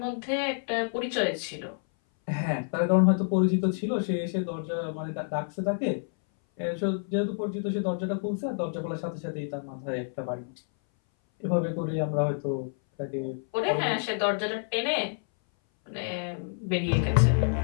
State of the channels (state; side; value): silent; right; 58 dB below the other